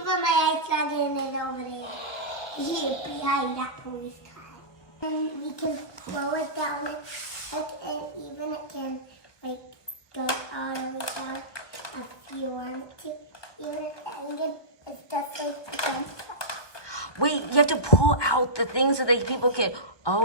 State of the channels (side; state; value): right; late; 1.2 ms